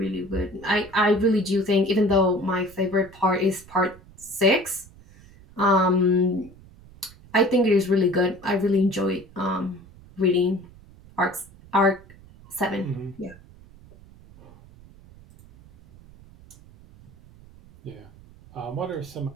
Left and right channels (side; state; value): right; noise; rumble, 23 dB below the sound